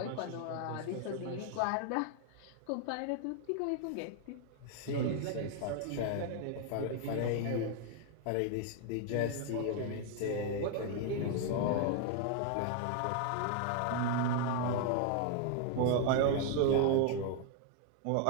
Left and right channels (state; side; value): different; both; correlation 0.00